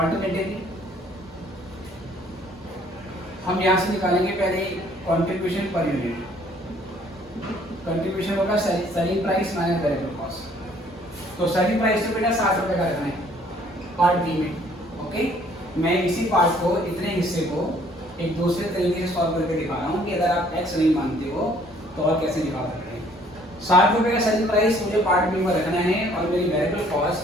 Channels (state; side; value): normal; both; correlation 0.60